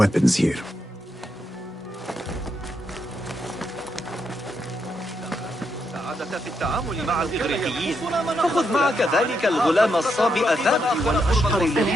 here. السعادة في التعامل مع الإغريقيين. فخذ معك ذلك الغلام الصابئ الذكي والأشقر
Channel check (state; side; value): normal; both; correlation 0.80